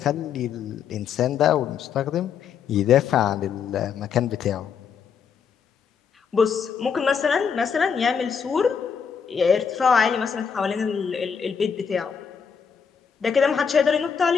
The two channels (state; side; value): quieter; right; 6.8 dB